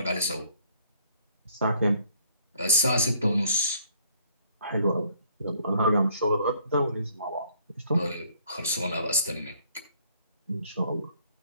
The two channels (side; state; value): both; inverted; correlation -0.62